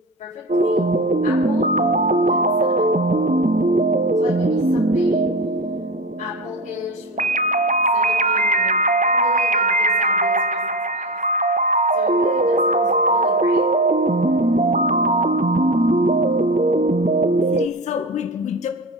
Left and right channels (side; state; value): both; normal; correlation 0.23